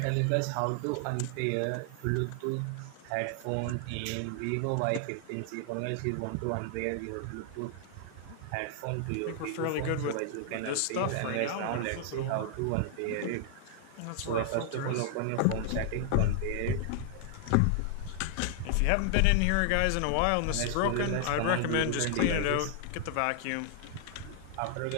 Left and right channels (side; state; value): both; different; correlation 0.00